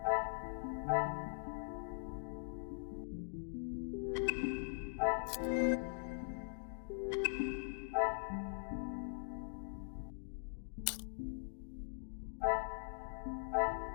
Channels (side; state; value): right; silent; digital silence